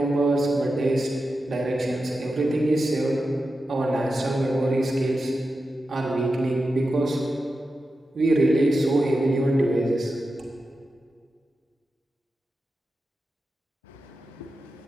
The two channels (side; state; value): both; normal; correlation 0.91